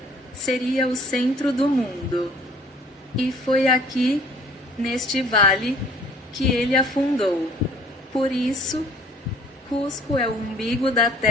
seria o centro do mundo. E foi aqui, neste vale, que ele afundou. Por isso, Cusco é o umbigo da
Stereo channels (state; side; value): normal; both; correlation 0.55